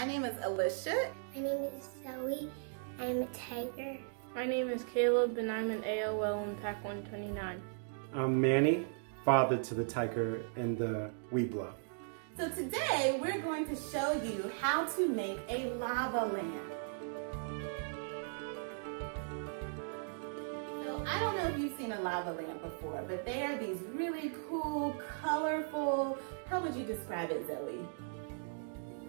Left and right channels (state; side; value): silent; left; digital silence